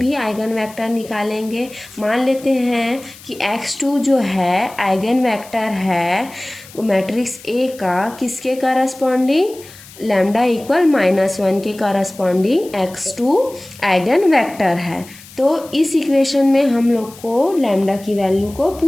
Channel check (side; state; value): left; noise; hiss, 20 dB below the sound